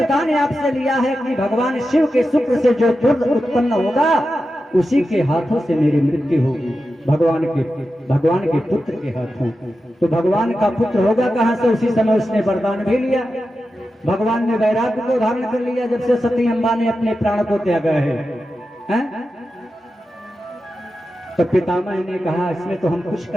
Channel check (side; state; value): both; normal; correlation 0.91